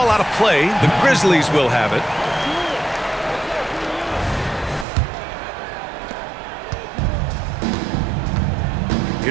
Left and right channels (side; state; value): left; drops out; at 4.9 s